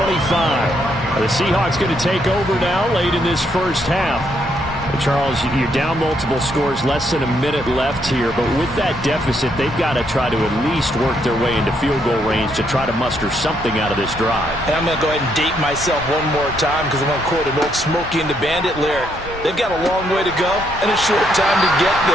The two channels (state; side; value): normal; both; correlation 0.74